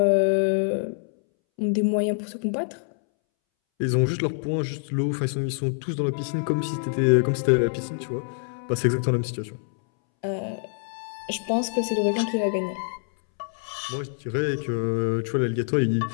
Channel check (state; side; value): silent; right; 61 dB below the other